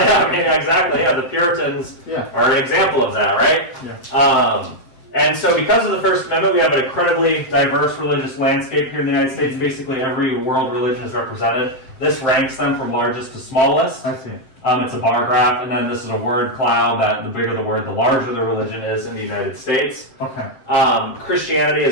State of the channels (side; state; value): right; late; 7.7 ms